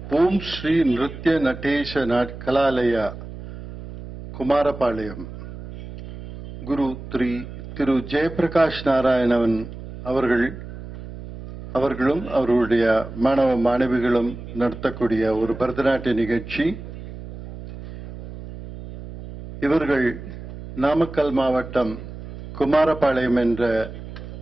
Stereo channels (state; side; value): noise; right; hum, 12 dB below the sound